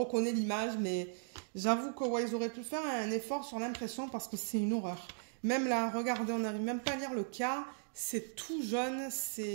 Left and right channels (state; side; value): silent; left; digital silence